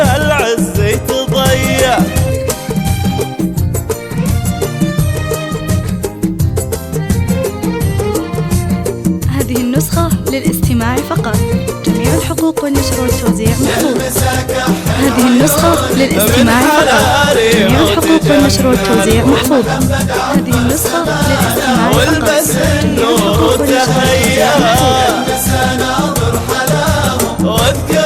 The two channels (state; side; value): identical; both; correlation 1.00